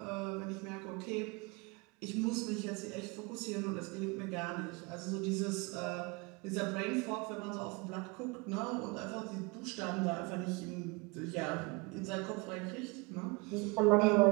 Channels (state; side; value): quieter; left; 27.6 dB